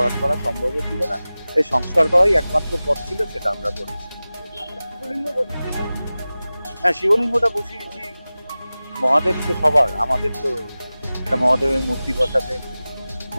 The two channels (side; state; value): both; inverted; correlation -0.97